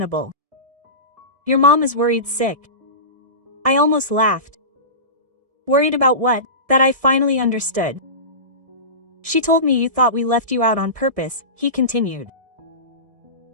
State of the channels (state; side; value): late; left; 1.7 ms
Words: Your mom is worried sick. I almost laughed. Worried about what? That I finally understood. She told me you thought we left you out on purpose, he continued.